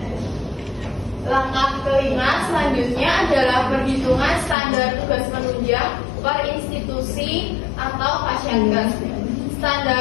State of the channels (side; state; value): right; drops out; at 4.5 s